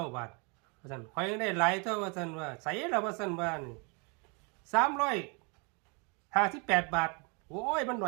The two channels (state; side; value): quieter; left; 32.7 dB